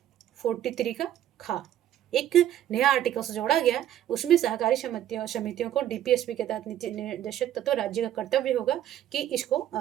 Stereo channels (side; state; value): left; quieter; 11.6 dB